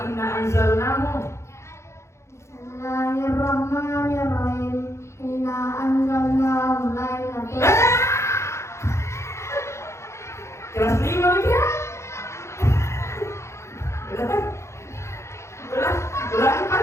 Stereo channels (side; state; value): right; late; 0.13 ms